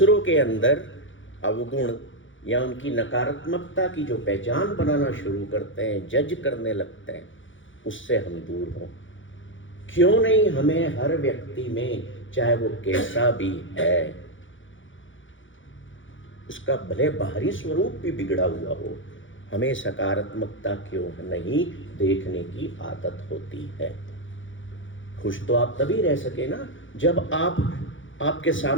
के अंदर अवगुण या उनकी नकारात्मकता की जो पहचान बनाना शुरू करते हैं, जज करने लगते हैं, उससे हम दूर हों। क्यों नहीं हमें हर व्यक्ति में, चाहे वो कैसा भी है, उसका भले बाहरी स्वरूप भी बिगड़ा हुआ हो, हमें सकारात्मकता क्यों नहीं देखने की आदत होती है। खुश तो आप तभी रह सके ना जब आपके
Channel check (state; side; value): late; right; 0.56 ms